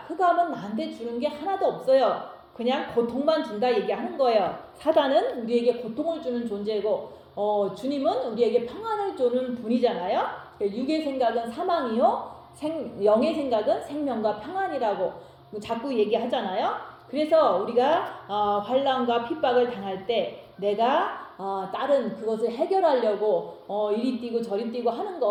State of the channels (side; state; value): both; identical; correlation 1.00